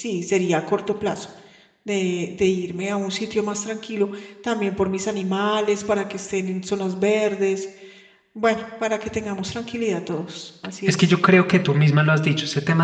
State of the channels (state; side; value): identical; both; correlation 1.00